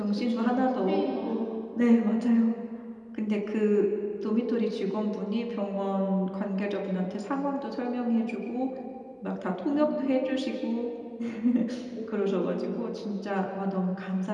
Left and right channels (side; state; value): both; identical; correlation 1.00